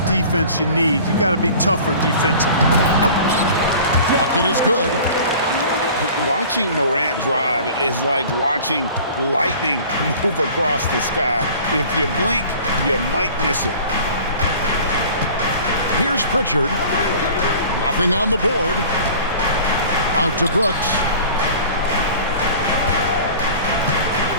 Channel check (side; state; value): both; inverted; correlation -0.44